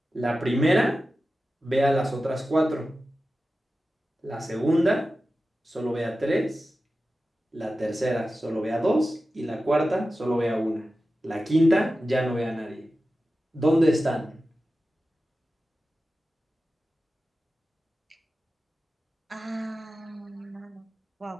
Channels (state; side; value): normal; both; correlation 0.94